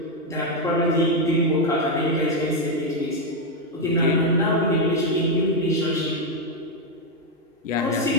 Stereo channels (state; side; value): normal; both; correlation 0.04